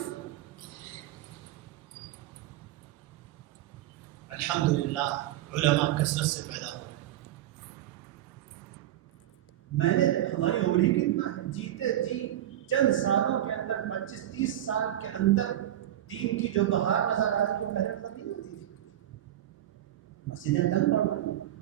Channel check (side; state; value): left; quieter; 12.7 dB